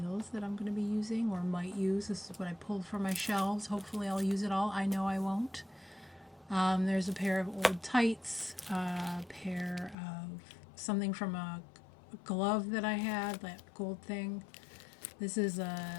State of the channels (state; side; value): drops out; right; at 10.0 s